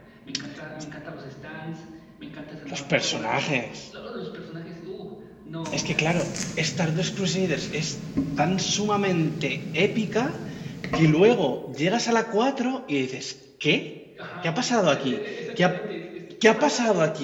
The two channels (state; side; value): identical; both; correlation 1.00